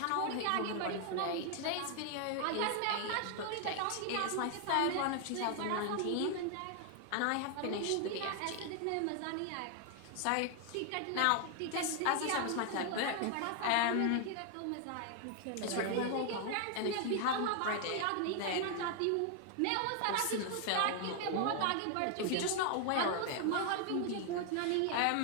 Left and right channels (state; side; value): different; both; correlation 0.00